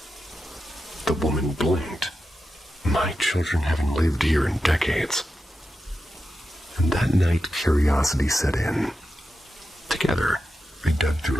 The woman blinked. My children haven't lived here in decades. And that night, curiosity set in. Together, they dug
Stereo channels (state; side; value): normal; both; correlation 0.90